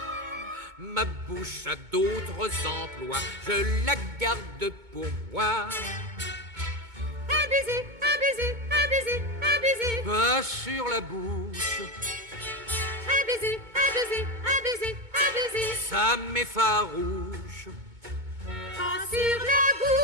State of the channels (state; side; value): late; left; 2.2 ms